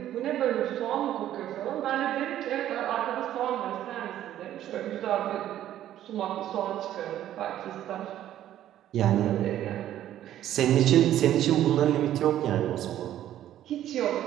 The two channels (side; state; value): left; quieter; 12.1 dB